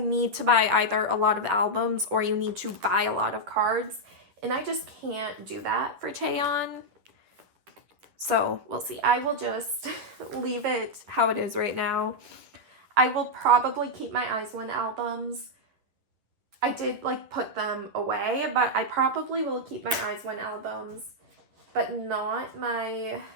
need to buy either a lot of albums or you need to buy a lot of cards. And I just can't do that for Cheon. So we'll see. I will just leave it how it is right now. I will probably keep my Eyes One albums. I did like put them away, but I probably will keep my Eyes One albums, but not my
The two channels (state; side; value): late; left; 10 ms